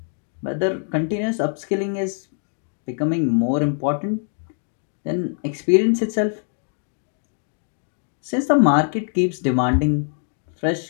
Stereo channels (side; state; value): right; silent; 61 dB below the other